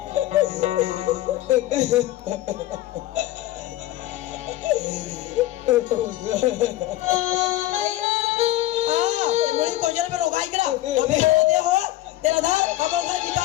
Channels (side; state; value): right; quieter; 15.2 dB